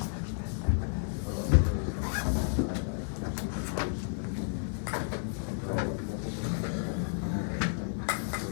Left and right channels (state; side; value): silent; right; digital silence